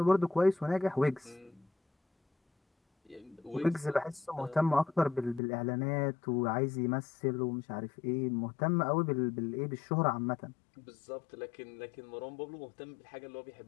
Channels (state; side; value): drops out; right; at 5.4 s